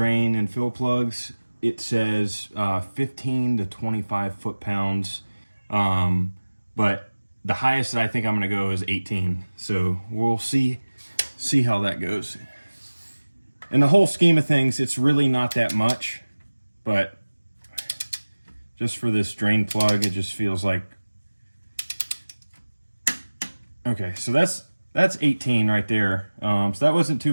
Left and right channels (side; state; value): both; inverted; correlation -1.00